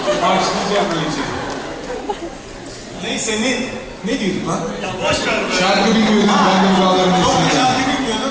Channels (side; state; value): both; identical; correlation 1.00